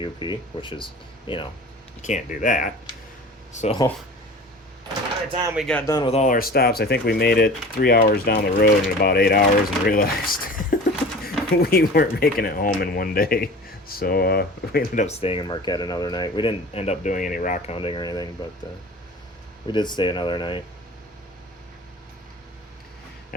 UP, which is, you know, you can't do that. So by the time we got done with all our stops, I think we made it 3 hours down the road in about 8 hours and realized we weren't making it home in one day. So we ended up staying in Marquette another night. We didn't end up doing any rock hunting or anything, but we did stay another night.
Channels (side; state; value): both; normal; correlation 0.39